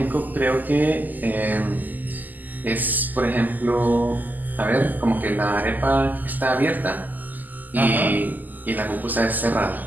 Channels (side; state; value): left; late; 0.084 ms